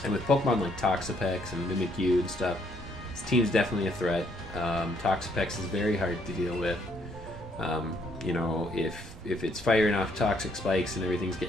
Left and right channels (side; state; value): both; normal; correlation 0.69